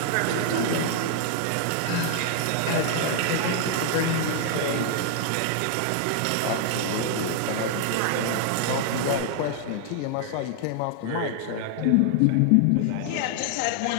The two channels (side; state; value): both; different; correlation 0.00